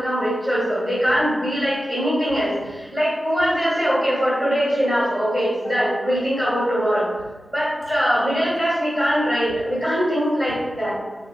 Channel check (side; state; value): both; normal; correlation 0.93